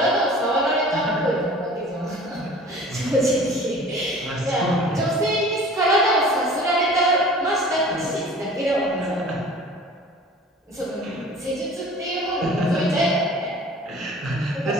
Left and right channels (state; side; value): normal; both; correlation 0.45